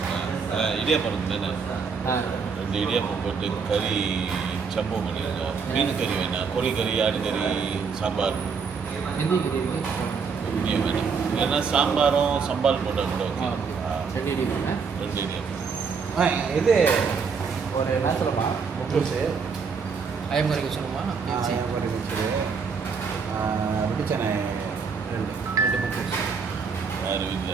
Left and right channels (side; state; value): left; quieter; 5.6 dB